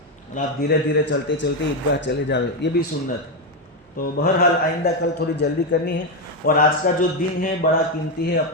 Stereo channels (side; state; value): both; normal; correlation 0.08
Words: اور آپ دھیرے دھیرے چلتے چلتے عیدگاہ چلے جاؤ. یہ بھی سنت ہے. تو بہرحال آئندہ کل تھوڑی جلدی کرنی ہے. اور آج کا جو دن ہے بڑا قیمتی ہے،